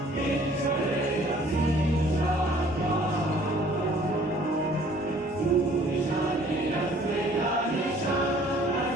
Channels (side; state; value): both; normal; correlation 0.56